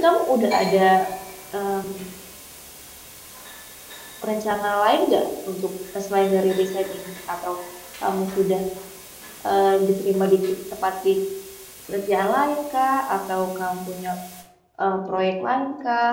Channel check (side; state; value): both; identical; correlation 1.00